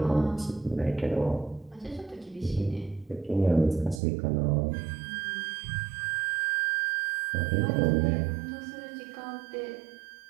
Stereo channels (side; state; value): left; drops out; at 4.0 s